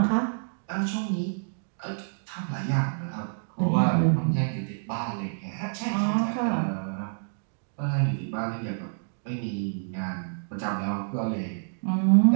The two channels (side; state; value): left; silent; digital silence